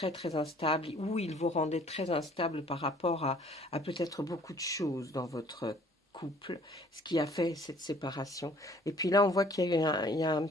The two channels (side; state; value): both; normal; correlation 0.56